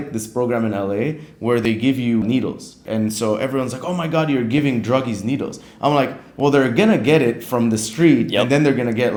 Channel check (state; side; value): identical; both; correlation 1.00